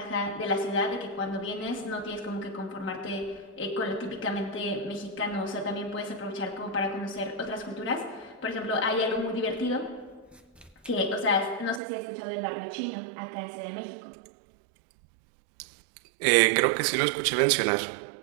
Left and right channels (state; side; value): drops out; left; at 11.8 s